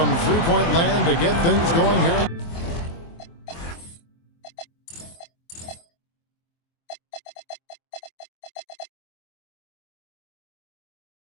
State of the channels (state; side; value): late; right; 24 ms